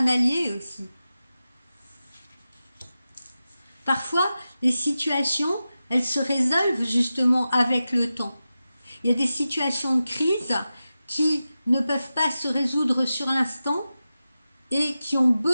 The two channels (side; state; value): both; inverted; correlation -0.93